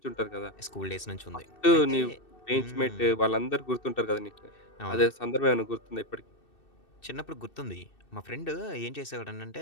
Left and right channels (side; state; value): right; late; 2.6 ms